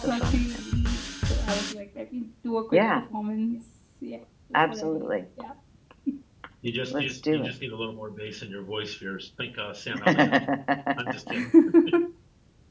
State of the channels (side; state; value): both; identical; correlation 1.00